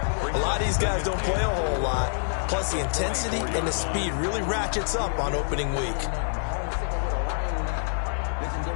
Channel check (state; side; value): silent; right; 58 dB below the other